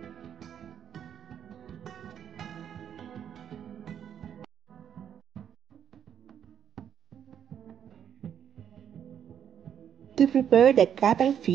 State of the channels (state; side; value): quieter; left; 8.9 dB